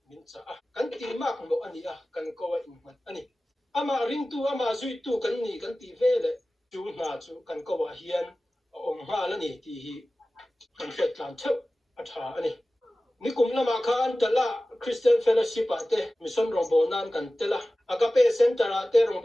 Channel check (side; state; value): both; normal; correlation 0.96